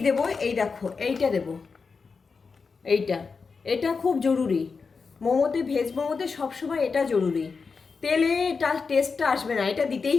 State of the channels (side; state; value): right; quieter; 4.9 dB